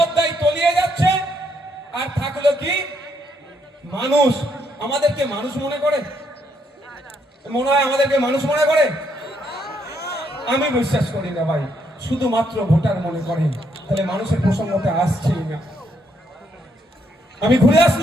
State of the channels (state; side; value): normal; both; correlation 0.74